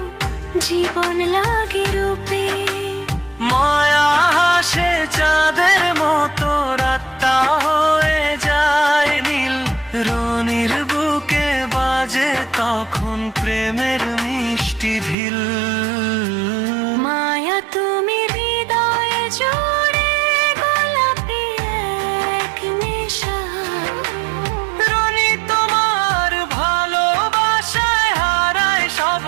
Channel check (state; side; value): drops out; left; at 15.2 s